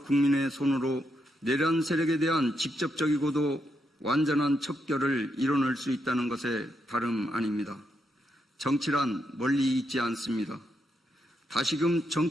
국민의 손으로 내란 세력에 대한 직접적이고도 완전한 척결을 이뤄낼 수 있다는 것에 다름 아닙니다. 정치란 멀리 있지 않습니다. 다시금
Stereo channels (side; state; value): both; normal; correlation 0.81